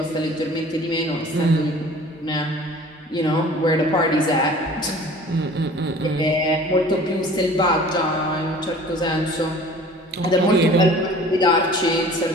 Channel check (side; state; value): both; normal; correlation 0.46